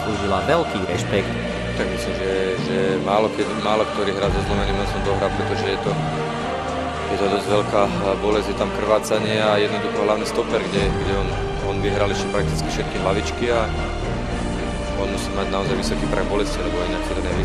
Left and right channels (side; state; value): both; identical; correlation 1.00